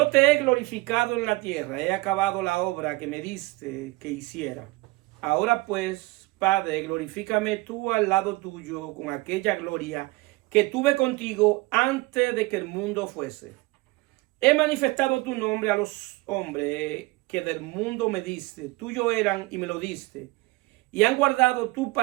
te he glorificado en la tierra, he acabado la obra que me diste que hiciera. Ahora pues, Padre, glorifícame tú al lado tuyo con aquella gloria que tuve contigo antes de que el mundo fuese. He manifestado tu nombre a los hombres que del mundo me diste, tuyo eran y me lo diste. Y han guardado tu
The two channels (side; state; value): left; quieter; 22.2 dB